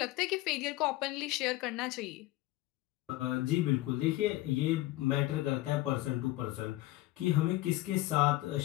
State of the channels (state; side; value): quieter; right; 17.7 dB